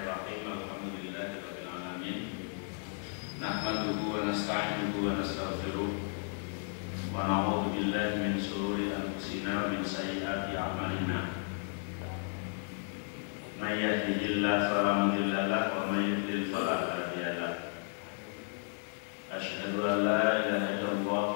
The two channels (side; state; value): right; silent; 55 dB below the other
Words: Alhamdulillahirabbil alamin. Nahmaduhu wa nasta'inuhu wa nastaghfiruh. Wa na'udzu billahi min shururi anfusina wa min sayyiati a'malina. May yahdihillahu fala mudilla lahu wa may yudlil fala hadiya lahu. Asyhadu an la ilaha illallah